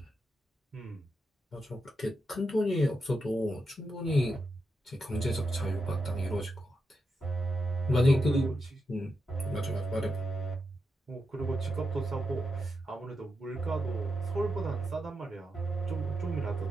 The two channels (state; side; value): normal; both; correlation 0.86